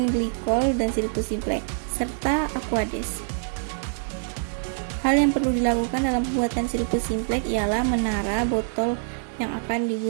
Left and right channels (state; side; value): silent; left; digital silence